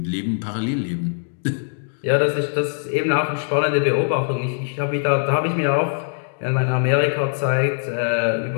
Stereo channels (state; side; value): silent; right; digital silence